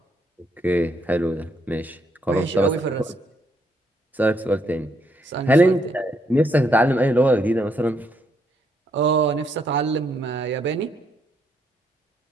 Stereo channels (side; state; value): both; normal; correlation 0.74